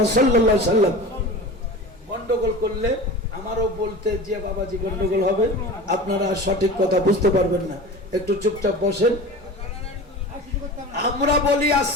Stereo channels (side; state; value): both; normal; correlation 0.34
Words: সাল্লাল্লাহু আলাইহি সাল্লাম। গন্ডগোল করলে আমারও বলতে যে বাবাজি গন্ডগোল হবে, আপনারা সঠিক কথা বুঝতে পারবেন না। একটু চুপচাপ বসেন। আমরা বলি